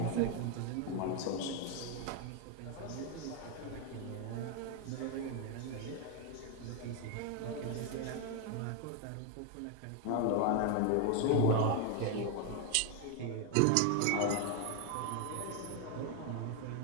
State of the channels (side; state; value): both; different; correlation 0.01